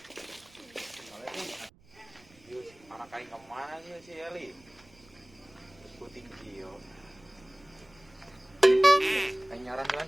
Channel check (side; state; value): right; noise; rumble, 27 dB below the sound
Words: Yuk. Anak kain kemana sih si Eli? Puting kio. Kain nyaran jalan